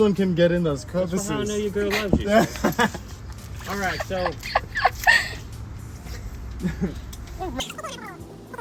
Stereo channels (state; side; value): identical; both; correlation 1.00